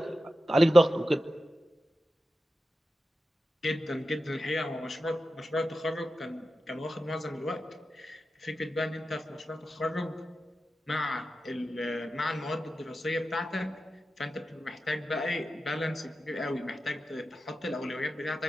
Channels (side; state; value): both; normal; correlation 0.91